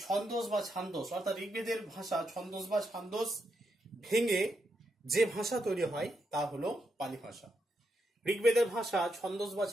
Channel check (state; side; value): normal; both; correlation 0.82